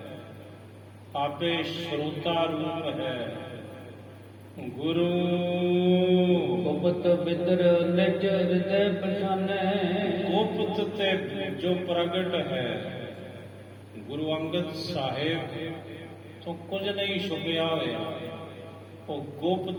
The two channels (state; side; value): identical; both; correlation 1.00